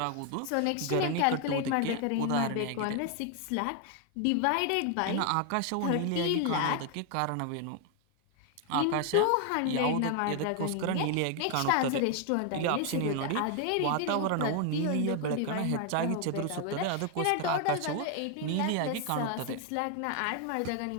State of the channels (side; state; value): both; different; correlation 0.01